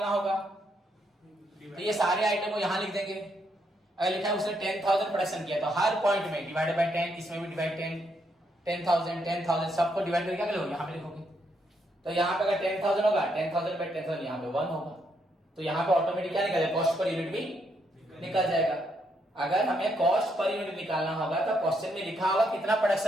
होगा तो ये सारे आइटम को यहां लिख देंगे, अगर लिखा है उसने 10,000 प्रोडक्शन किया तो हर पॉइंट में डिवाइडेड बाय 10, इसमें भी डिवाइड 10,000 सबको डिवाइड करके क्या लिखोगे, यहां पे लिखोगे। तो यहाँ पे अगर 10,000 होगा, 10,000 बाय 10,000 यहाँ पे 1 होगा, तो यहाँ पे ऑटोमेटिक क्या निकल जाएगा, कॉस्ट पर यूनिट भी निकल जाएगा। अगर हमें कॉस्ट पर यूनिट निकालना होगा तो क्वेश्चन में लिखा होगा कितना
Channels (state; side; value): normal; both; correlation 0.76